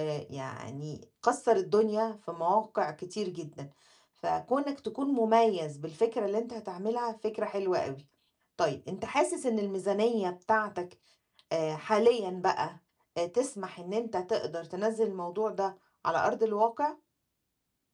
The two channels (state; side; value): identical; both; correlation 1.00